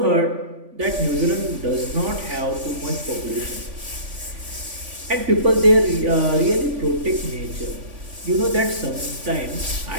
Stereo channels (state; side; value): late; left; 3.5 ms